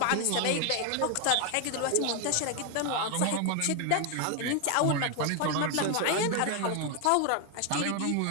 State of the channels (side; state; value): both; different; correlation 0.01